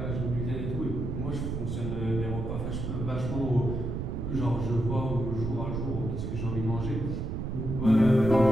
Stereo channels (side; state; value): right; noise; rumble, 3 dB below the sound